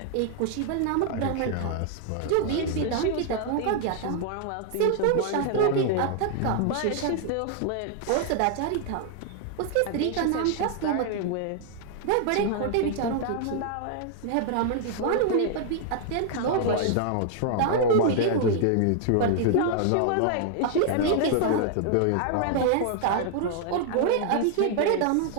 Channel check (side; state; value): both; different; correlation 0.00